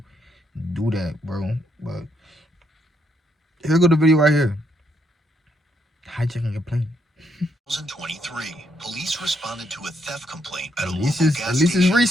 do that, bro. But here go the video right here. Hijacking a plane. 2023, police responded to a theft complaint at a At local gas least it's station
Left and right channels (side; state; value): both; normal; correlation 0.75